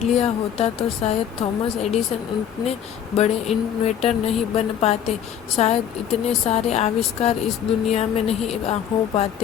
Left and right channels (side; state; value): right; quieter; 9.2 dB